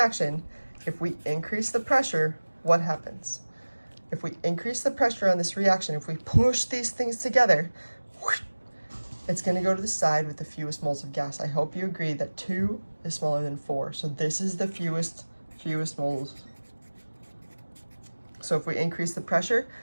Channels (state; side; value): inverted; both; correlation -1.00